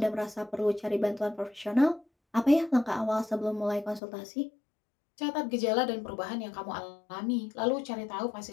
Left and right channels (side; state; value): right; drops out; at 4.0 s